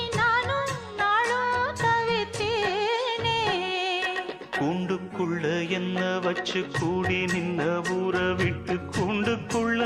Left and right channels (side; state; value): both; identical; correlation 1.00